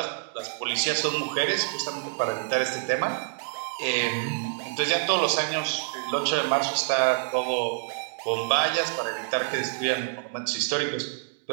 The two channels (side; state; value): left; silent; digital silence